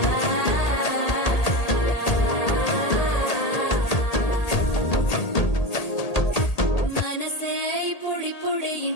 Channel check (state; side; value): late; right; 1.8 ms